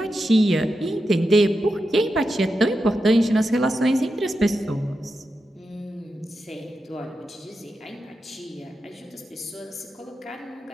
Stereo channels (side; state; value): both; normal; correlation 0.89